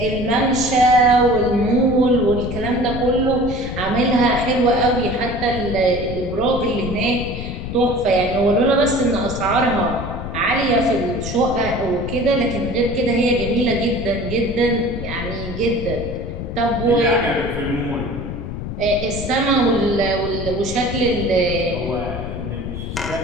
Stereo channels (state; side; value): noise; left; rumble, 7 dB below the sound